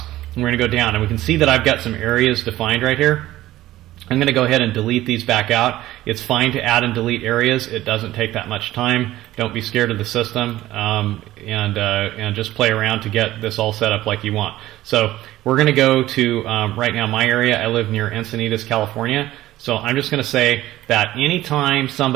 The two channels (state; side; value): quieter; left; 15.3 dB